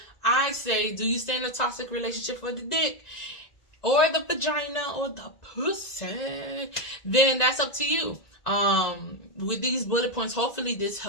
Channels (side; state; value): right; late; 1.9 ms